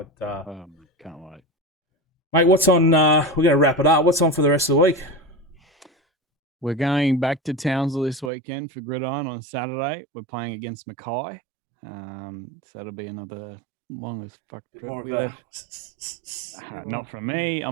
can't wait, mate. What's on? We're going to wrap it up. What's on for the rest of the week? We're going back to Townsville this weekend for Gridiron on Saturday. We're playing against Mackay. So that'll be another long as fuck trip. Not from me. I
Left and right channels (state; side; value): drops out; left; at 8.3 s